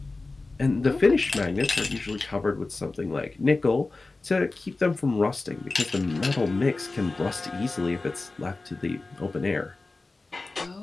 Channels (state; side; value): quieter; right; 3.5 dB